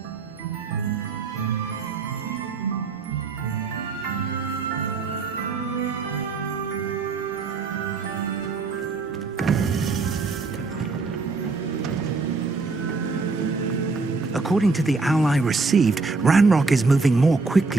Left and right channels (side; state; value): left; quieter; 4.1 dB